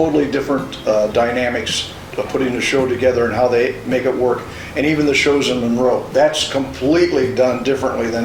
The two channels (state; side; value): identical; both; correlation 1.00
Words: different dynamics of putting the show together and how they make it work. And even the shows in Monroe, that's completely done differently than